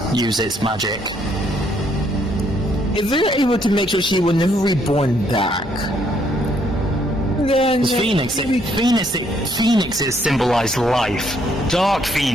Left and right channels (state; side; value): normal; both; correlation 0.69